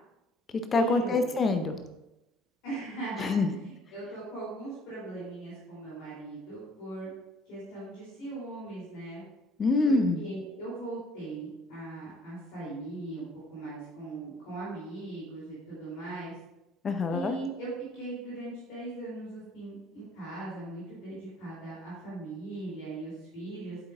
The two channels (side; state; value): both; normal; correlation 0.59